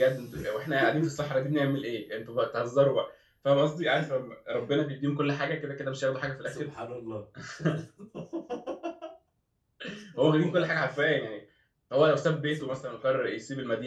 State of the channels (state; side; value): identical; both; correlation 1.00